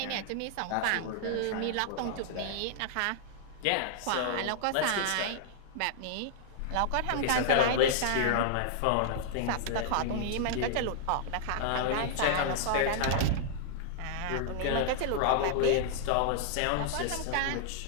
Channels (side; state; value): both; different; correlation -0.01